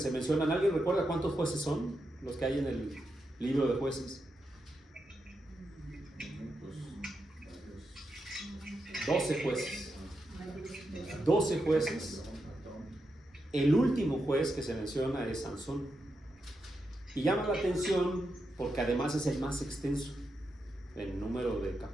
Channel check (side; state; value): both; normal; correlation 0.86